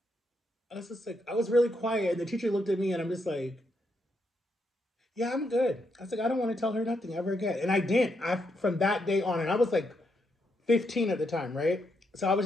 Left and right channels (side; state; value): both; normal; correlation 0.79